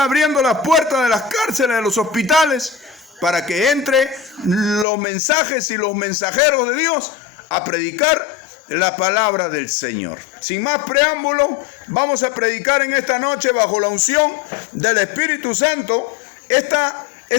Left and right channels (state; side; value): drops out; right; at 4.9 s